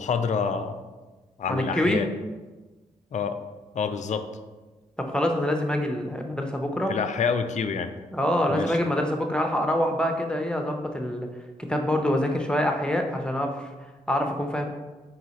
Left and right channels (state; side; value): normal; both; correlation 0.73